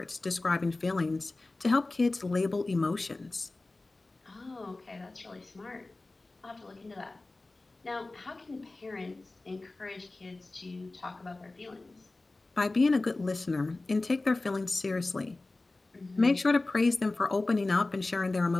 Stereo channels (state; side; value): quieter; right; 3.1 dB